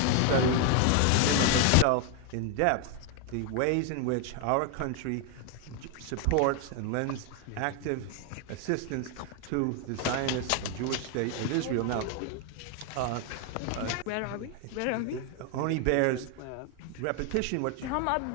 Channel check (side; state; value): both; different; correlation 0.00